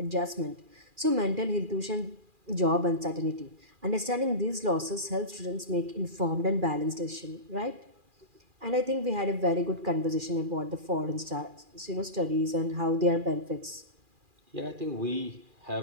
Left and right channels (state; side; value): late; left; 2.4 ms